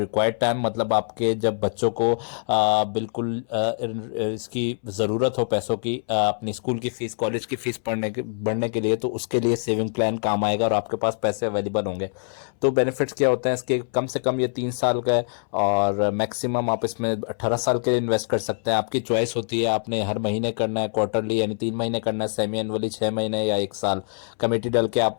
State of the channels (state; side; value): silent; right; 62 dB below the other